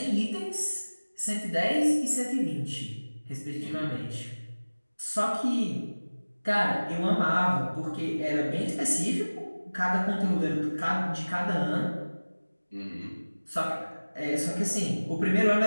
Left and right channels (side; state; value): both; inverted; correlation -1.00